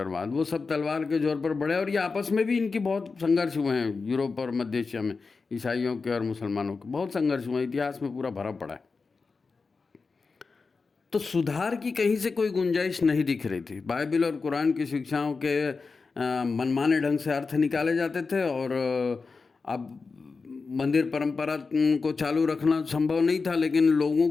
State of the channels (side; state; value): right; quieter; 4.5 dB